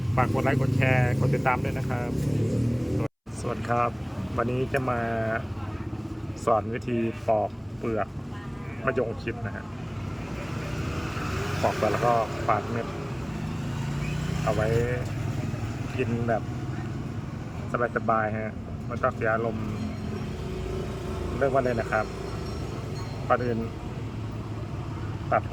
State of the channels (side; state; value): both; identical; correlation 1.00